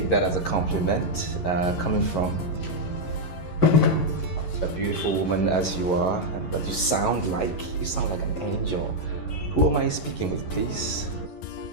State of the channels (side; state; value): right; late; 11 ms